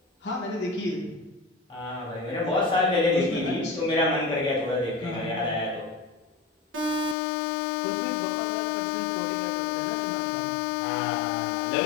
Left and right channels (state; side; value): drops out; right; at 7.2 s